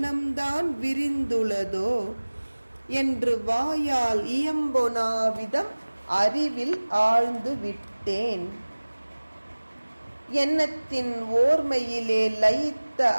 விரிந்துள்ளதோ என்று வாயால் இயம்பொனாவிதம் அறிவில் ஆழ்ந்து விட்டேன். எண்ணத்தின் ஓர்மையிலே லயித்த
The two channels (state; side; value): inverted; both; correlation -1.00